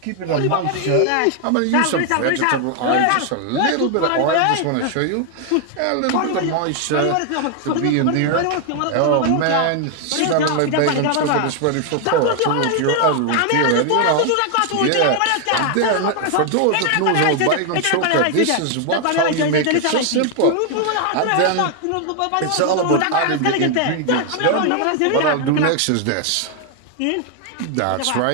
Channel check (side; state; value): both; different; correlation 0.00